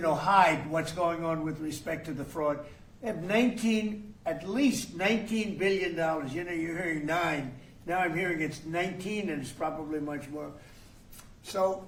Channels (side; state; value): both; identical; correlation 1.00